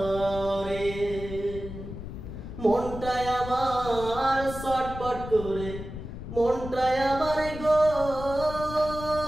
মনটায় আমার ছটফট করে, মনটায় আমার গো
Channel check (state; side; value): noise; left; rumble, 10 dB below the sound